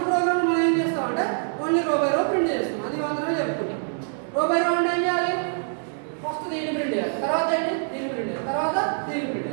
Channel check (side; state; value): left; silent; 62 dB below the other